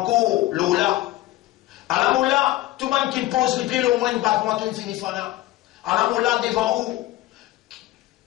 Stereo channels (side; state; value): right; quieter; 16.7 dB